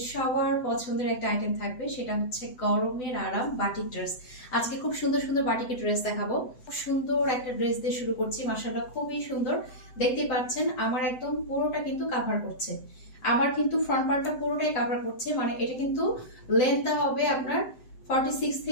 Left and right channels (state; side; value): late; right; 7.9 ms